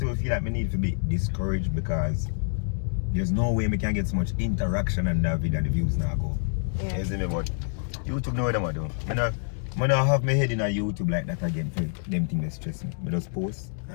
even feel like I need to be discouraged because there's no way I can get so much interaction on that video and the views now go. Yeah. You see me? But YouTube know what I'm do. I don't have my head in a YouTube like that again for them things that stress me. I just post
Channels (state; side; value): silent; right; digital silence